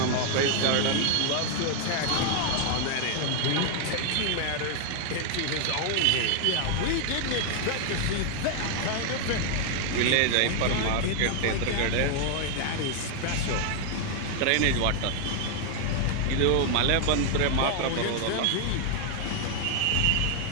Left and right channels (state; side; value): different; both; correlation 0.00